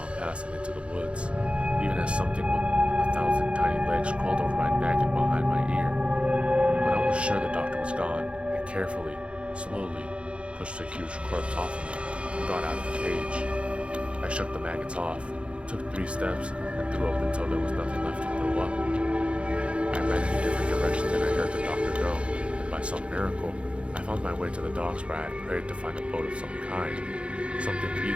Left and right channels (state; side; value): late; left; 0.059 ms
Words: past and into the woods, even as something with 1,000 tiny legs crawled over my neck and behind my ear. When I was sure the doctor was gone, I carefully, slowly, pushed the huge corpse off of me and got out of the cage. I shook the maggots off, took 3 steps, and threw up until there was nothing left to throw up. I ran in a different direction than I heard the doctor go, and by some miracle, I found my way to the docks where I had prayed to find a boat of some kind, something